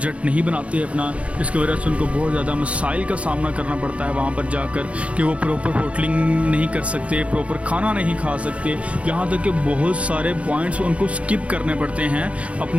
नहीं बनाते अपना, जिसकी वजह से उनको बहुत ज़्यादा मसाइल का सामना करना पड़ता है वहाँ पर जाकर कि वो प्रॉपर होटलिंग नहीं कर सकते, प्रॉपर खाना नहीं खा सकते, यहाँ तक कि बहुत सारे पॉइंट्स उनको स्किप करने पड़ते हैं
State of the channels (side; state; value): left; late; 0.063 ms